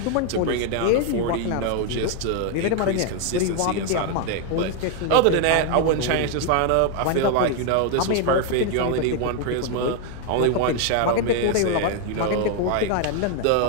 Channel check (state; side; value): different; both; correlation 0.01